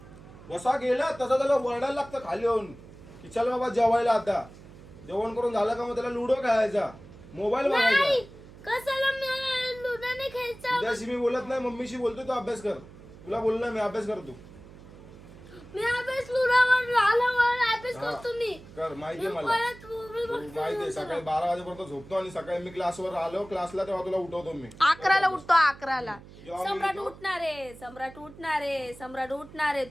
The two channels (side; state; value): right; noise; hum, 19 dB below the sound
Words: जसा गेला तसा त्याला वरडायला लागतं खाली येऊन की चल बाबा जेवायला. आता जेवण करून झालं का मग त्याला लुडो खेळायचा, मोबाईल बघायचा. कशाला मी लुडाने खेळायचं? तुझ्याशी मी बोलत नाही, मम्मीशी बोलतो. तू अभ्यास कर. तुला बोललोय मी अभ्यास करतो. मी अभ्यास लुडावर आल्यावर अभ्यास करतो मी. कर. माहितीये मला. माहितीये. सकाळी 12 वाजेपर्यंत झोपतो आणि सकाळी मी क्लासवर आलो क्लासला तेव्हा तुला उठवतो मी. 11ला उठतो. 11ला जेव्हा मी सम्राट उठतो- सम्राट उठणारे